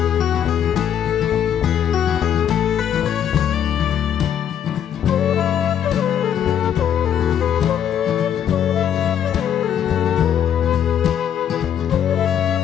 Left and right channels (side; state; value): right; quieter; 9.4 dB